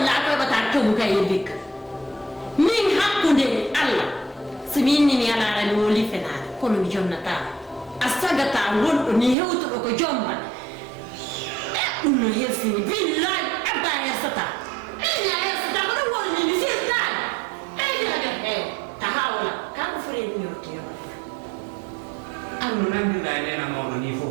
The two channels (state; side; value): drops out; left; at 9.3 s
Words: ko bata ciobu kay bik min hakkunde Allah so min ni ala ran woli fenare kono mi jonnata astagata wondo ni hewto ko jomma dum no yesini billahi abba yasata ina yasata ko woni ni sista tahawla ka ko fure ni yotiyo anu nan dai nena mo ni